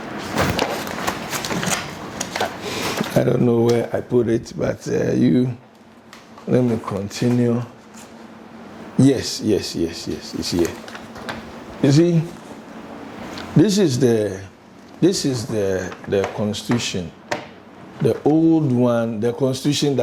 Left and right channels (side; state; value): both; identical; correlation 1.00